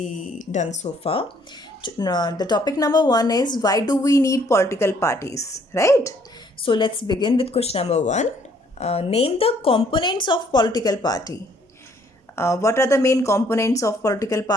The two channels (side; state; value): both; normal; correlation 0.64